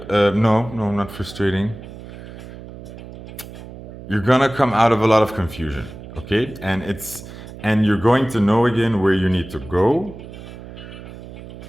not frustrating. You're gonna come out of a lot of confusion, okay? And you're going to know again where you need to go.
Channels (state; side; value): noise; right; hum, 14 dB below the sound